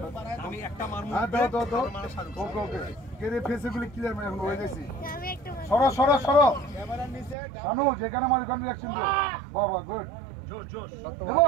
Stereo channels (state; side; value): drops out; left; at 7.4 s